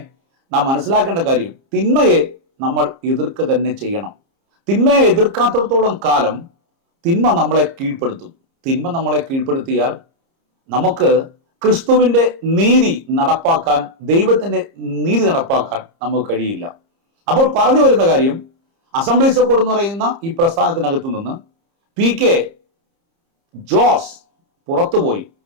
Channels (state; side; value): late; left; 30 ms